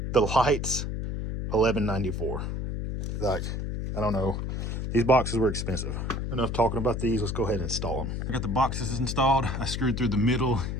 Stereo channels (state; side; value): noise; left; hum, 3 dB below the sound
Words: The lights, $11.94. Like, I don't know. These boxes were expensive. Enough talking about these. Let's go ahead and install them. I got the boxes installed. I screwed through the middle